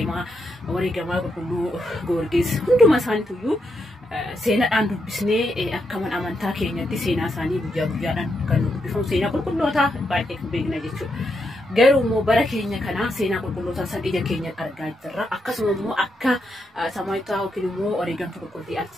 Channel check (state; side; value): normal; both; correlation 0.82